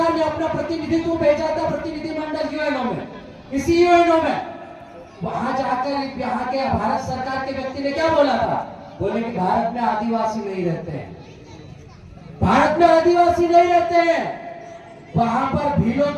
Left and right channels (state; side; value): identical; both; correlation 1.00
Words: ने अपना प्रतिनिधित्व भेजा था, प्रतिनिधिमंडल यूएनओ में। इसी यूएनओ में वहां जाकर यहाँ के भारत सरकार के व्यक्ति ने क्या बोला था? बोले कि भारत में आदिवासी नहीं रहते हैं, भारत में आदिवासी नहीं रहते हैं, वहां पर भीलों